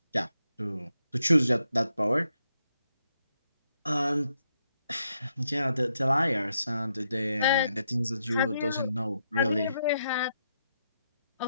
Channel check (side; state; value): both; inverted; correlation -0.80